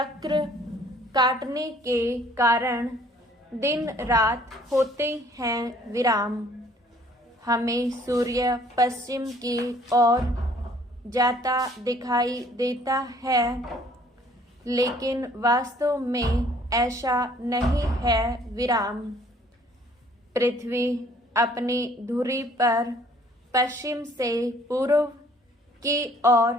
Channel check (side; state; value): both; normal; correlation 0.58